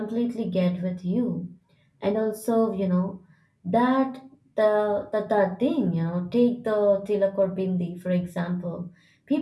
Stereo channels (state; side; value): identical; both; correlation 1.00